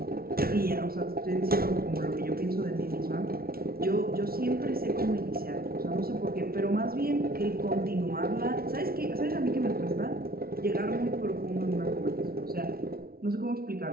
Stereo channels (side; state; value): left; late; 0.44 ms